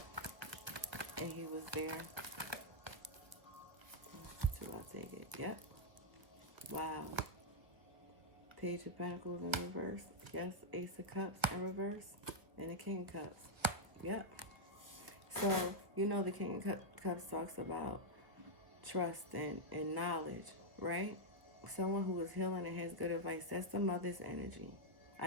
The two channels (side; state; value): left; late; 1.1 ms